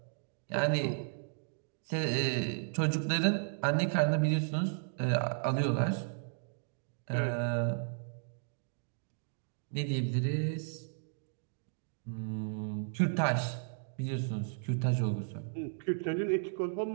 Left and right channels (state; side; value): silent; left; digital silence